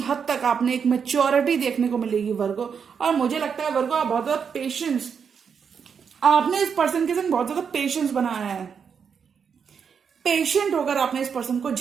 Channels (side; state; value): left; quieter; 6.7 dB